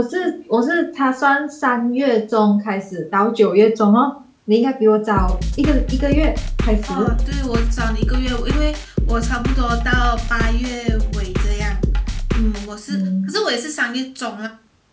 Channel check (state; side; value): identical; both; correlation 1.00